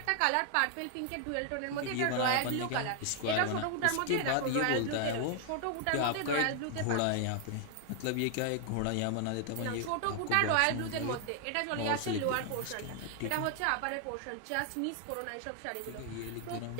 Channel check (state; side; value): different; both; correlation 0.00